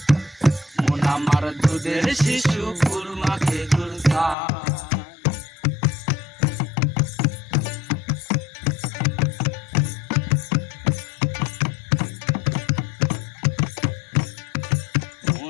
মন আমার দুধের শিশু খুরমা খেজুর চায়।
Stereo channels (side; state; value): right; drops out; at 4.4 s